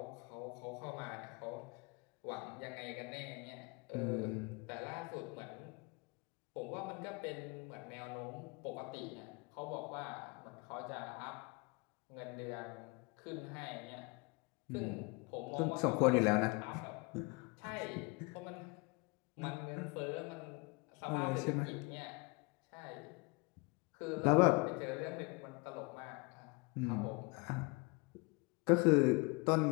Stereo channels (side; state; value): right; quieter; 28.5 dB